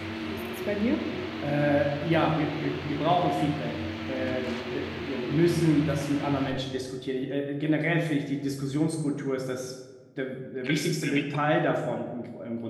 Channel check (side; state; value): both; identical; correlation 1.00